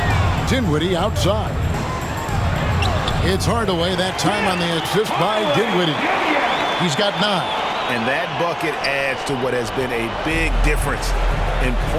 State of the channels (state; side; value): identical; both; correlation 1.00